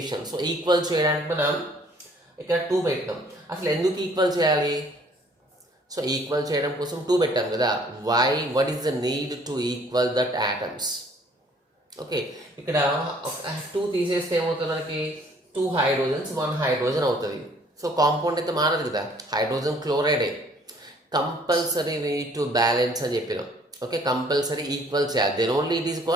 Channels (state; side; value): normal; both; correlation 0.58